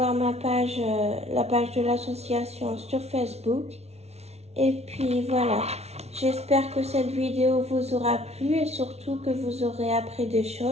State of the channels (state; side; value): late; left; 0.31 ms